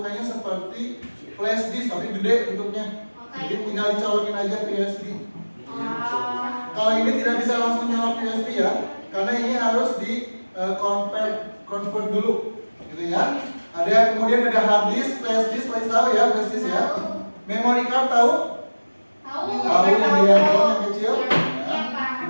seperti flash disk tapi gede bentuknya. Jadi tinggal dicolokin aja ke USB. Kalau ini tidak bisa langsung nyolok USB ya, karena ini harus di convert dulu, gitu ya. Ada kemudian ada hard disk, flash disk, pasti tahu ya flash disk ya. Memory card tahu? Tahu yang di handphone yang kecil? Ya.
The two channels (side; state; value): both; inverted; correlation -1.00